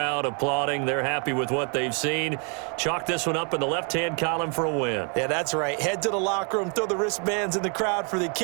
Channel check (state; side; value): quieter; left; 38.0 dB